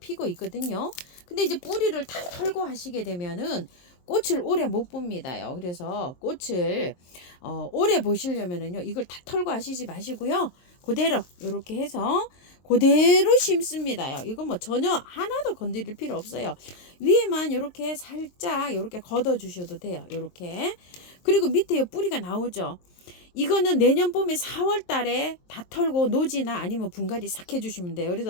있거든요. 근데 이제 뿌리를 다 털고 하시게 되면은 꽃을 오래 못 봅니다요. 그래서 꽃을 오래 보시려면은요, 이걸 다 털고 하시지 마시고요. 그대로 이렇게 해서 그대로 심습니다요. 이거 뭐 전혀 하나도 건드릴 필요 없어요. 위에만 이렇게 살짝 이렇게 걷어 주셔도 돼요. 이렇게. 그리고 밑에 요 뿌리가 나오죠. 이거는 내년 봄에 4월 달에 다 털고 노지나 아니면 분갈이 싹 해주시면 돼요.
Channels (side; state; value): right; late; 23 ms